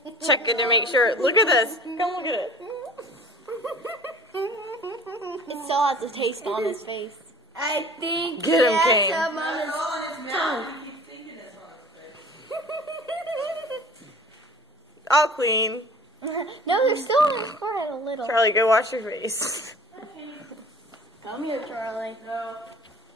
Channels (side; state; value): both; normal; correlation 0.45